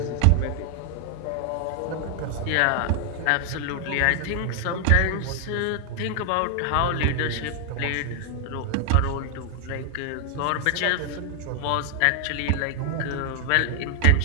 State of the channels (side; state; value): both; different; correlation 0.00